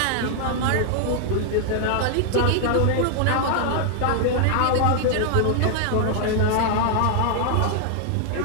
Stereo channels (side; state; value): both; different; correlation 0.00